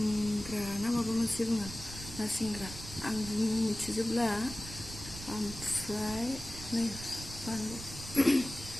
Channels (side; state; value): right; noise; rumble, 12 dB below the sound